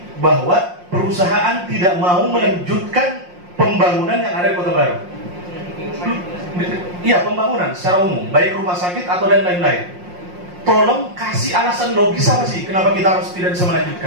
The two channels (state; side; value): late; left; 5.6 ms